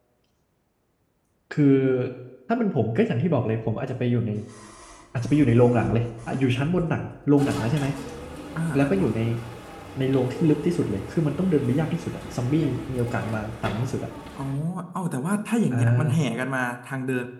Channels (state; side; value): identical; both; correlation 1.00